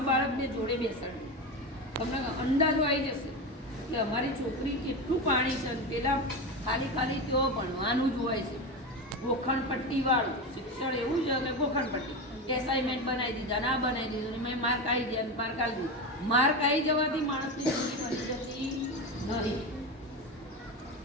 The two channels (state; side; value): normal; both; correlation 0.20